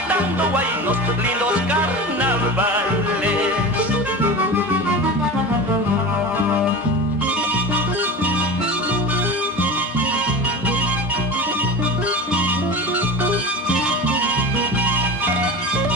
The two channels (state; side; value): normal; both; correlation 0.30